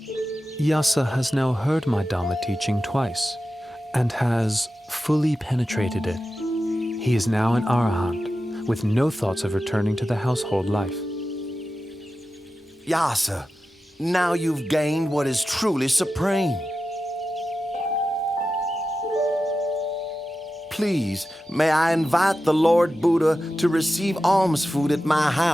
Yasa has now heard my Dhamma teaching twice, and has fully penetrated it. He is now an arahant, with no thoughts of returning to the household life. Yasa, now you've gained what is truly supreme. Please, may I invite the Lord Buddha to receive alms food at my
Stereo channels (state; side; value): normal; both; correlation 0.92